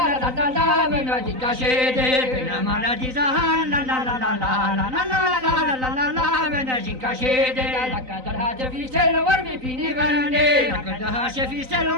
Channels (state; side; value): late; left; 3.9 ms